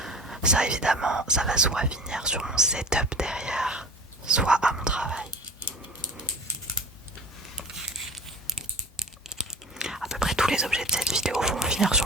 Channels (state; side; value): normal; both; correlation 0.38